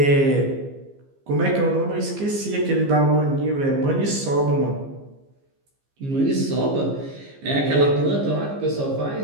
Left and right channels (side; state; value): left; late; 15 ms